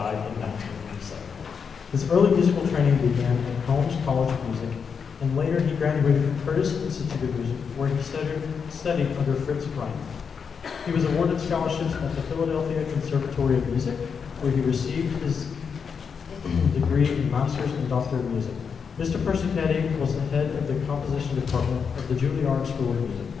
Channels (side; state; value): right; quieter; 6.3 dB